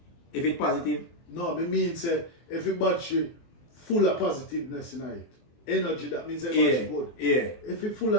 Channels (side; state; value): right; late; 24 ms